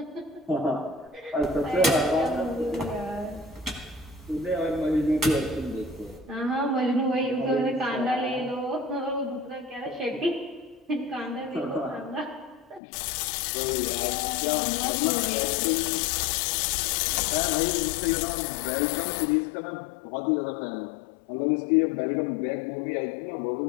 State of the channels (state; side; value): drops out; right; at 12.8 s